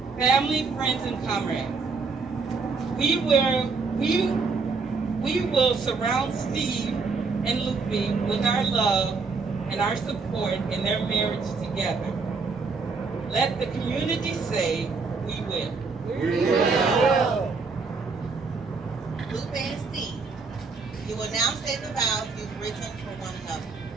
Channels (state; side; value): quieter; left; 4.5 dB